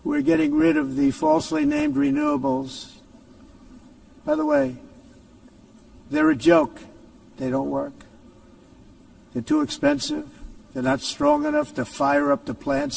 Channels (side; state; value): both; identical; correlation 1.00